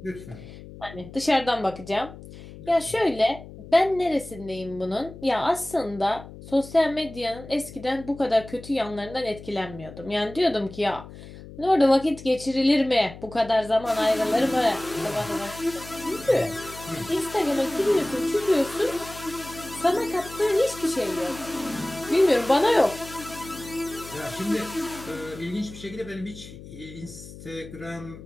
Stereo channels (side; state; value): left; noise; hum, 16 dB below the sound